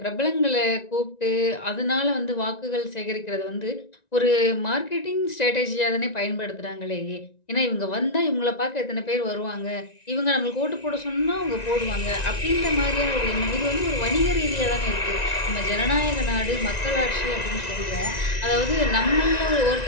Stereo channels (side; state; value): right; late; 1.9 ms